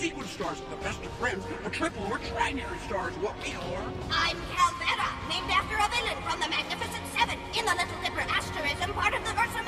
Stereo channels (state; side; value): identical; both; correlation 1.00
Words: stars, the best of friends, a triple or trinary stars, what we are. I'm Calvera, named after a villain from the Magnificent Seven in the Little Dipper asterism, part of the Ursa